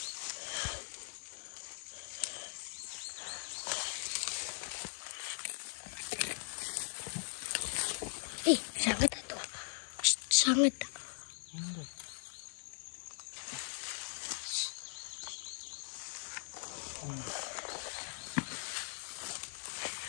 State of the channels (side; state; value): right; silent; 51 dB below the other